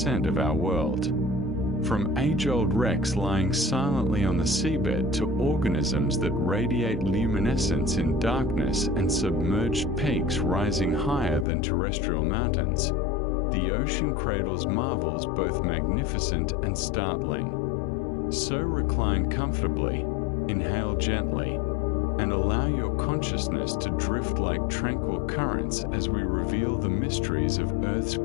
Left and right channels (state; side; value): drops out; right; at 11.5 s